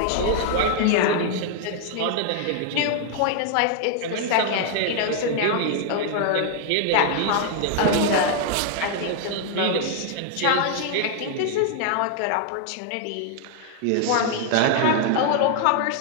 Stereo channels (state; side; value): different; both; correlation 0.00